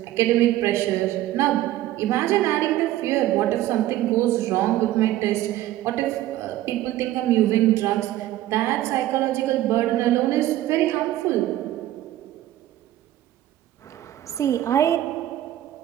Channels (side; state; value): left; quieter; 14.2 dB